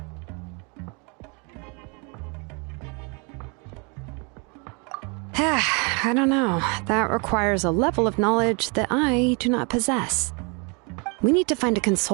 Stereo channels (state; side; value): quieter; left; 32.9 dB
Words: I don't know. That requires a level of knowledge that I do not possess. We need to find a